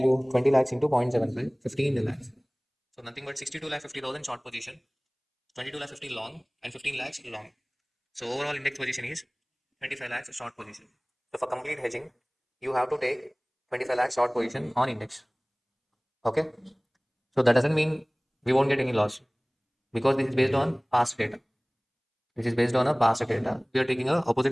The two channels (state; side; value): identical; both; correlation 1.00